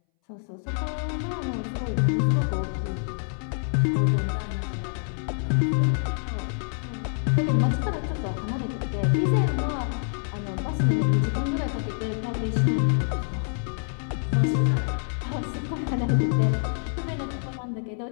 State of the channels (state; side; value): silent; right; 61 dB below the other